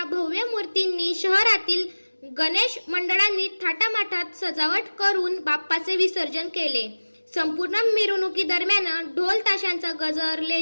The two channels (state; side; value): inverted; both; correlation -1.00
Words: भव्य मूर्तींनी शहरातील गणेश मंडळांनी थाटामाटात सजावट करून बाप्पाचे विसर्जन केले. संपूर्ण मिरवणुकीदरम्यान ढोल ताशांचा गजर,